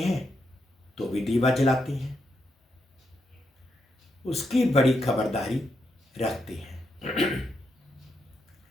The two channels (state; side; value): normal; both; correlation 0.81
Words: तो भी दीवा जलाते हैं, उसकी बड़ी खबरदारी रखते हैं।